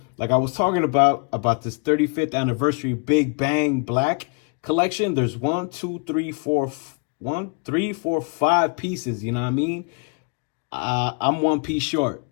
like I was talking about this 35th anniversary Big Bang Black collection. There's 5 pieces. You know what I mean? I'm one piece short.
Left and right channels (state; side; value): quieter; right; 36.0 dB